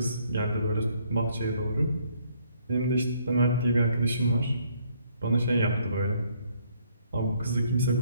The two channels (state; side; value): inverted; both; correlation -0.67